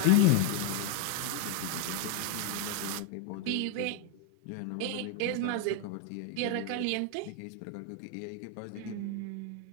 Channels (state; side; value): different; both; correlation 0.01